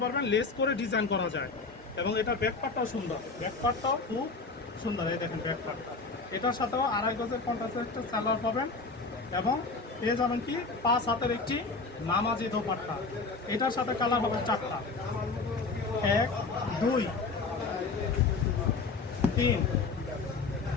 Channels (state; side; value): quieter; right; 4.1 dB